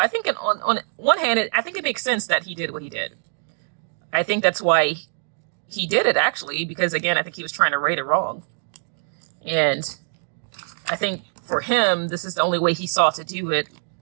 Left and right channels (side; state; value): left; silent; digital silence